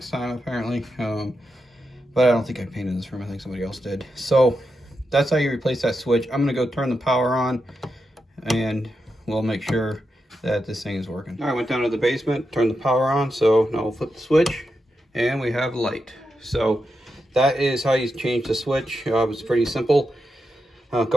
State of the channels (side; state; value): both; normal; correlation 0.87